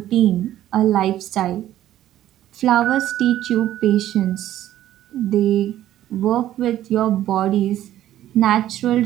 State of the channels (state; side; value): quieter; left; 12.9 dB